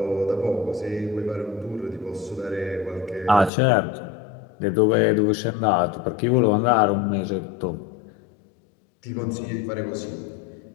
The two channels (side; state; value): right; drops out; at 3.5 s